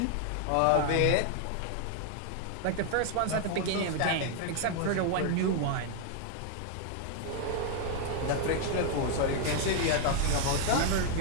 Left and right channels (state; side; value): different; both; correlation 0.00